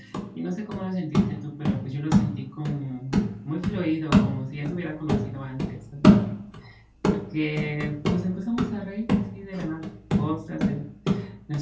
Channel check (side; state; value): both; identical; correlation 1.00